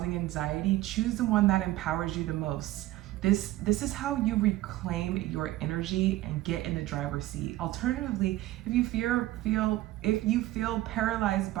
anxiety, choose the one that empowers you the most. This is how you reclaim your energy and get in the driver's seat. Alternatively, if you feel paralyzed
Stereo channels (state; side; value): quieter; left; 16.2 dB